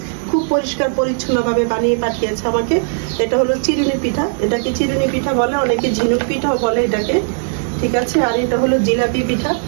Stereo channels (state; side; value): silent; left; digital silence